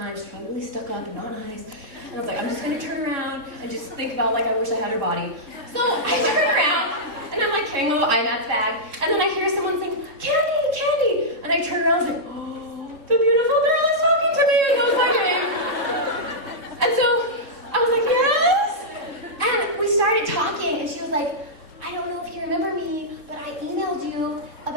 She's probably really stuck up and not nice. And I was like, I'm just going to turn around and just think about, like, I wish I had her body. So I turn around, and I'm, like, carrying a little IMAX bag. And then I hear someone saying, Kandee! And I turn around and I was like, oh, the beautiful girl is talking to me. And that was my name. And so like, I don't know if you remember me, but I emailed you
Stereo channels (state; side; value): late; left; 3.6 ms